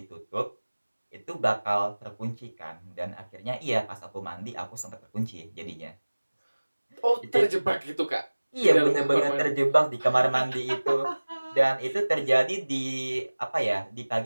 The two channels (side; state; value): both; inverted; correlation -1.00